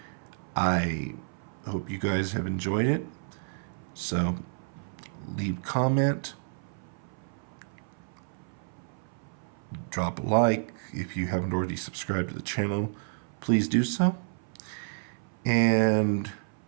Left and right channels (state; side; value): silent; left; 58 dB below the other